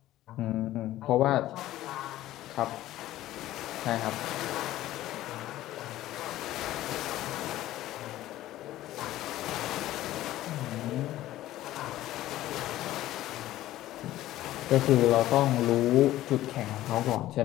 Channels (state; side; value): quieter; right; 14.8 dB